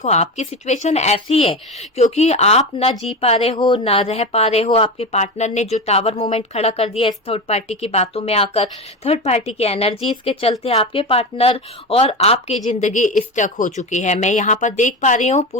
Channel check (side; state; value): both; normal; correlation 0.22